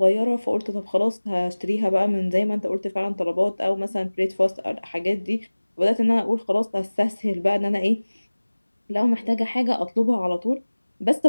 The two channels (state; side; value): inverted; both; correlation -1.00